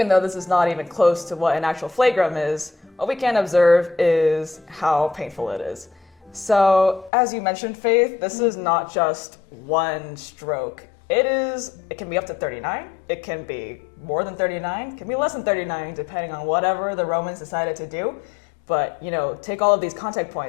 though this is not even close to what an actual flagrum is, what we can observe is how painful it is. So as you mentioned, Faith, this is not just one stroke. It can be up to 39, it can be more than 39, it can be less than 39, depending on whatever the Romans decided to do. But, take all of these contact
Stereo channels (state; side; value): drops out; right; at 7.1 s